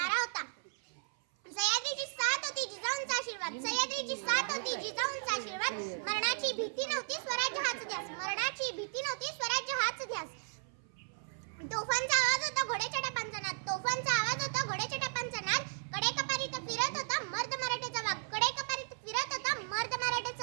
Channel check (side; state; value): left; silent; 54 dB below the other